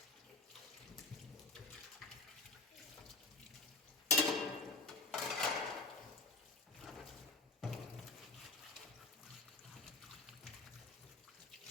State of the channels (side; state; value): right; quieter; 3.5 dB